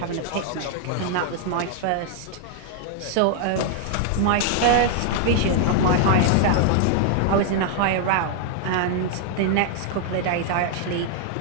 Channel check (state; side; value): different; both; correlation 0.00